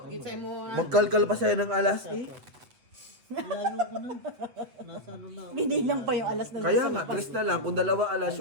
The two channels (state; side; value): late; left; 8.0 ms